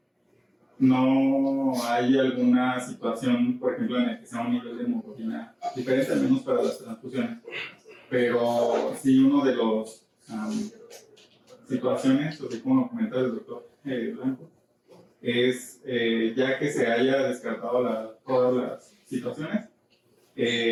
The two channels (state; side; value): identical; both; correlation 1.00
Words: No hay alguna situación, por ejemplo, en la que sea un nivel de hemoglobina diferente, al menos para las transfusiones, pero sí uno de los situaciones, así como lo comentaba el doctor Blanco, es ya que se haya descartado todas las situaciones,